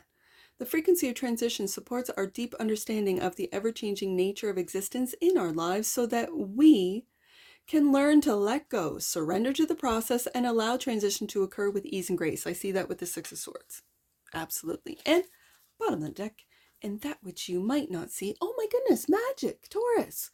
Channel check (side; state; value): both; identical; correlation 1.00